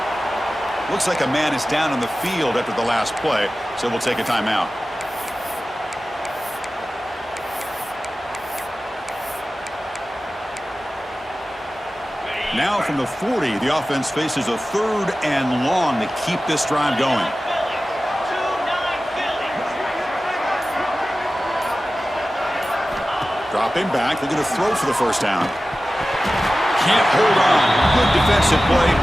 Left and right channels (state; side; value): normal; both; correlation 0.96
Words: Looks like a man is down on the field after the last play, so we'll take a timeout. Now from the 40, the offense faces a third and long to keep this drive going. Dropping back, they're going to throw for the first down. Can't hold on. Good defensive play